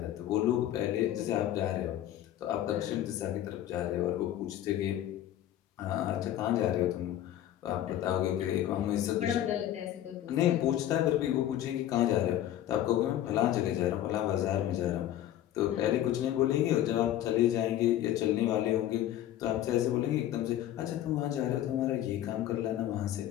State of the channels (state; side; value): quieter; right; 12.4 dB